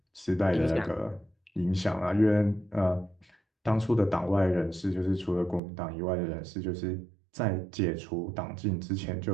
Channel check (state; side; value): drops out; left; at 5.6 s